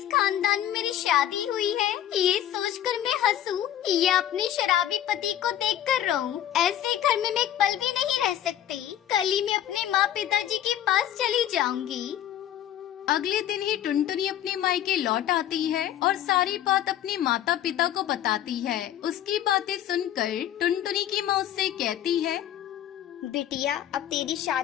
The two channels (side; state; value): right; quieter; 11.4 dB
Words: खानदान में मेरी शादी हुई है, ये सोचकर मैं हंसूं या अपने शराबी पति को देखकर रोऊं? ऐसे घर में मैं एक पल भी नहीं रह सकती। कल ही मैं अपने माँ पिताजी के पास चली जाऊंगी। अगले दिन ही टुनटुनी अपने मायके लौट आती है और सारी बात अपने माता पिता को बताती है। उसकी बातें सुनकर टुनटुनी की माँ उससे कहती है, बिटिया, अब तेरी